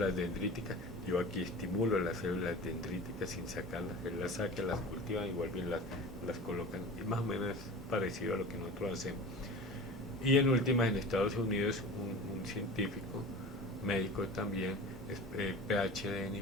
dendríticas. Yo aquí estimulo las células dendríticas sin sacarlas. Él las saca, las cultiva y vuelve y las colocan. Y más o menos es parecido a lo que nosotros hacemos. Y en últimas, en Estados Unidos, un científico, médico también, es, PhD en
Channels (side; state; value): both; normal; correlation 0.36